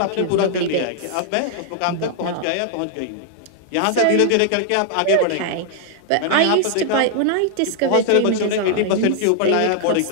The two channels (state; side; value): different; both; correlation 0.00